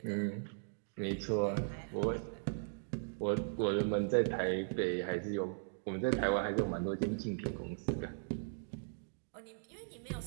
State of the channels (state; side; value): silent; left; digital silence